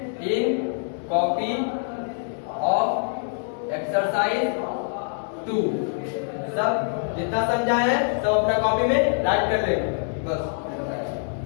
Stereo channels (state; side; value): silent; right; digital silence